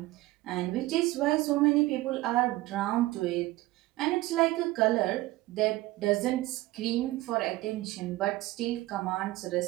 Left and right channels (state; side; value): quieter; left; 18.4 dB